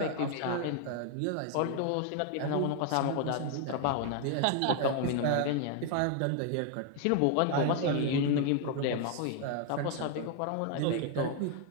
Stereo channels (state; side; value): different; both; correlation 0.00